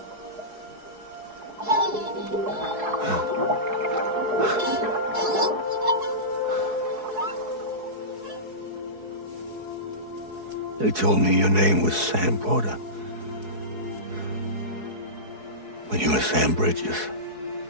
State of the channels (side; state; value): left; late; 4.7 ms